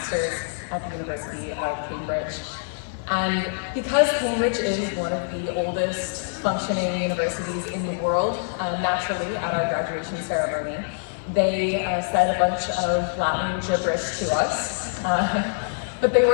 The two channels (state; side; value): silent; right; digital silence